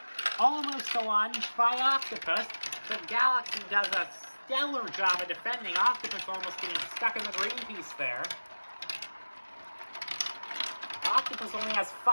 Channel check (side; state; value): both; inverted; correlation -1.00